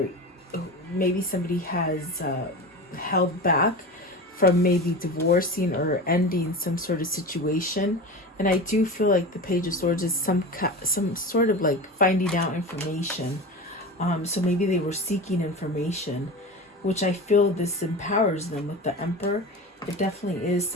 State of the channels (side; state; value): both; normal; correlation 0.29